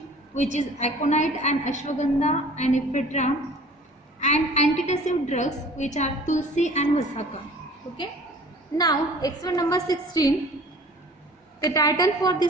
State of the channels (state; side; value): normal; both; correlation 0.47